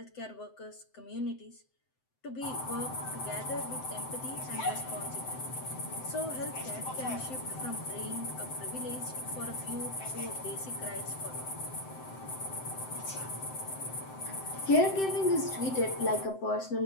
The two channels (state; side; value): late; right; 7.8 ms